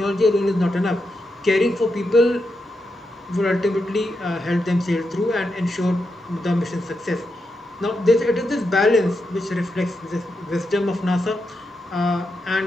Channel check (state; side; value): normal; both; correlation 0.85